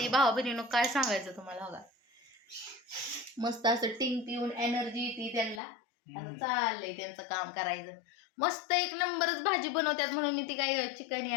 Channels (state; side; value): drops out; right; at 5.6 s